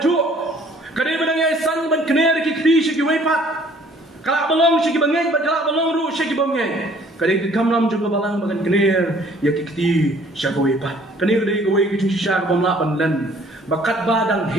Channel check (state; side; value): normal; both; correlation 0.57